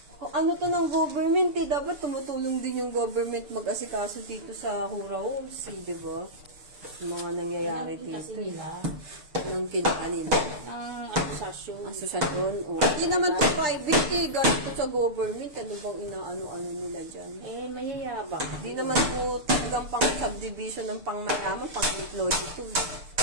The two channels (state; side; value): late; left; 6.7 ms